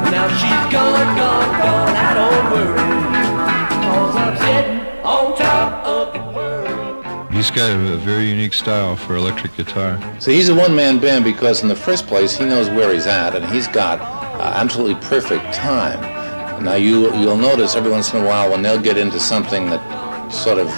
Now she's gone, I don't worry, 'cause I'm sitting on top of the world. He's got a very unique style for electric guitar. So he's a one-man band because in the first place he knows where he's at and he's got absolutely perfect time. Now you'll notice every once in a while when they'll get into something that sort of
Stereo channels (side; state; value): both; inverted; correlation -1.00